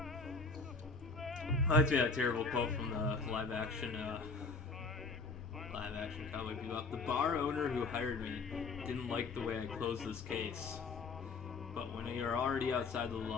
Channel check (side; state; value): right; quieter; 4.1 dB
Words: Reminds me of that terrible quote from the live action Cowboy Bebop. The bar owner who hired me didn't like the way I closed this case. But when you're already outside the